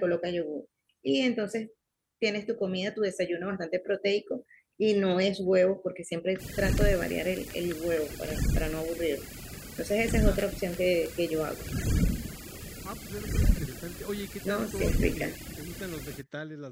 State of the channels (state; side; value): identical; both; correlation 1.00